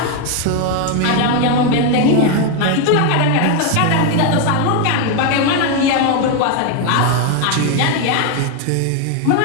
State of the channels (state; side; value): different; both; correlation 0.01